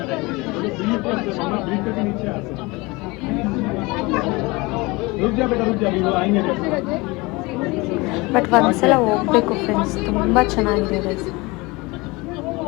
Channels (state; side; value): quieter; right; 24.1 dB